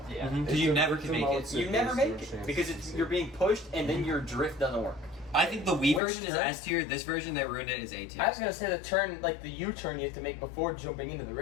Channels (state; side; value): drops out; right; at 6.0 s